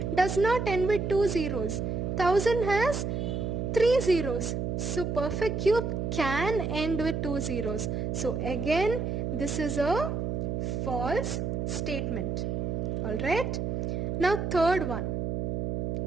does not end with 2 zeros. 1000 has 3 zeros. So perfect cube can end with 2 zeros. So again, this is a false statement. Alright. Now third one.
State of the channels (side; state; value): right; noise; hum, 1 dB below the sound